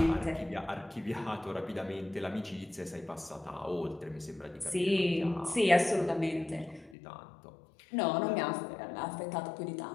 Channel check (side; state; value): right; drops out; at 7.0 s